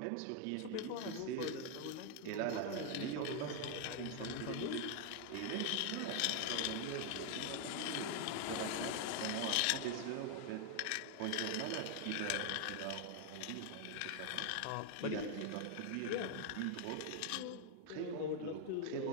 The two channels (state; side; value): different; both; correlation 0.00